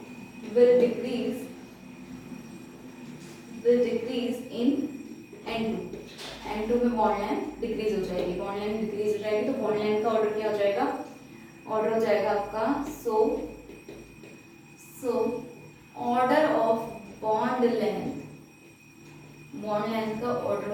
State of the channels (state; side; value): identical; both; correlation 1.00